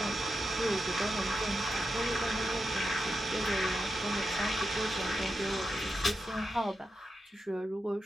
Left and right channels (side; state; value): both; normal; correlation 0.88